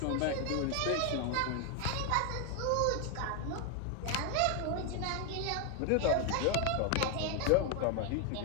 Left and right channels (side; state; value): both; different; correlation 0.01